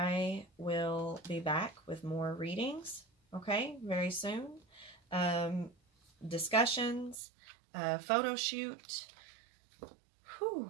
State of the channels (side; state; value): left; drops out; at 7.2 s